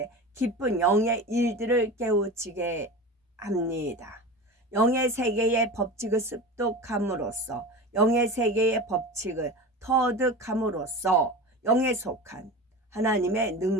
기쁜 영의 일들을 깨우치게 합니다. 영의 세계의 법칙을 습득함으로써 영의 세계의 법칙을 터득함으로써 영에 속한 하나님의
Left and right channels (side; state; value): both; normal; correlation 0.30